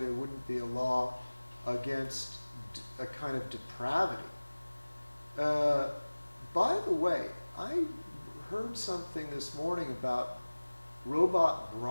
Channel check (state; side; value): inverted; both; correlation -1.00